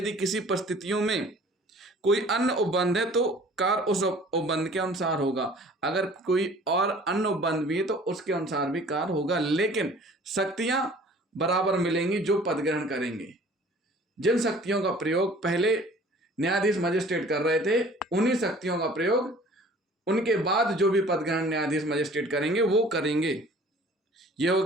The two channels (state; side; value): normal; both; correlation 0.50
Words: किसी परिस्थितियों में कोई अन्य उपबंध है तो कार्य उस उपबंध के अनुसार होगा, अगर कोई और अन्य उपबंध भी है तो उसके अनुसार भी कार्य होगा, लेकिन शक्तियां बराबर मिलेंगी जो पद ग्रहण करेंगे। जिन शक्तियों का प्रयोग पहले न्यायाधीश मजिस्ट्रेट कर रहे थे उन्हीं शक्तियों का प्रयोग उनके बाद जो भी पद ग्रहण न्यायाधीश मजिस्ट्रेट करेंगे वो करेंगे। ये हो